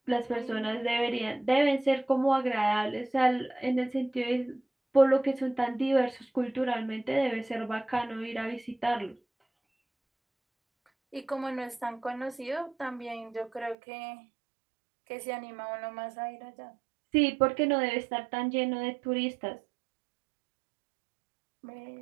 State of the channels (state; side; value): drops out; left; at 13.8 s